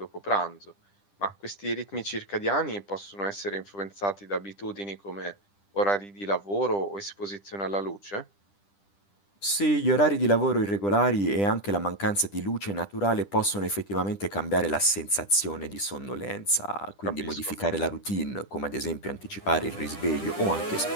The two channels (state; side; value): late; right; 10 ms